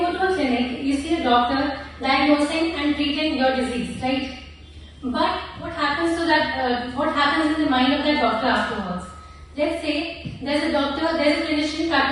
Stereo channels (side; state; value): both; identical; correlation 1.00